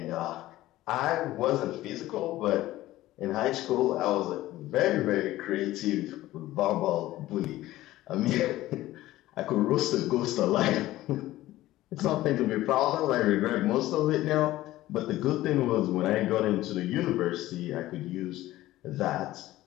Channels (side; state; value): right; quieter; 16.0 dB